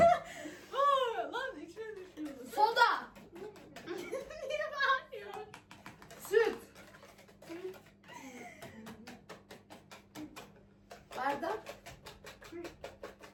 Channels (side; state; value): both; identical; correlation 1.00